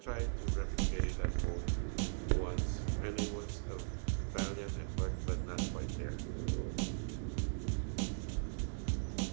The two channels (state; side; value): silent; left; digital silence